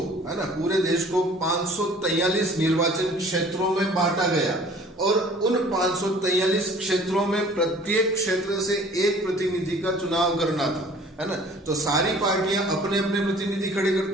है ना, पूरे देश को 543 निर्वाचन क्षेत्रों में बांटा गया, और उन 543 क्षेत्रों में प्रत्येक क्षेत्र से एक प्रतिनिधि का चुनाव करना था, है ना। तो सारी पार्टियां अपने अपने प्रतिनिधि खड़े करते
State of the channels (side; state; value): both; normal; correlation 0.51